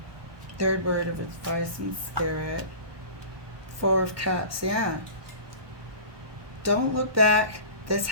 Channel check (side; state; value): left; late; 1.2 ms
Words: Third word of advice from Spirit. Four of Cups, yeah. Don't look back. This